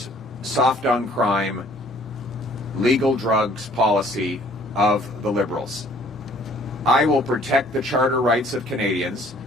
soft on crime, legal drugs policy of the Liberals. I will protect the charter rights of Canadians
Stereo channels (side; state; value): both; normal; correlation 0.58